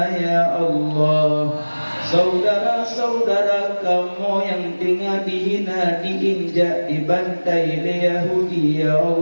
ya Allah. Saudara-saudara kamu yang tinggal dihina, diinjak, dibantai oleh Yahudi ya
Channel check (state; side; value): inverted; both; correlation -1.00